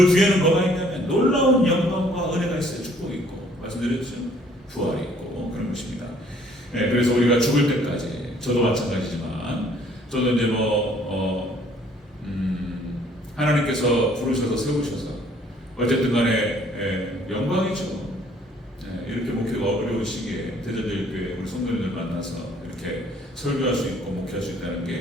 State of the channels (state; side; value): normal; both; correlation 0.60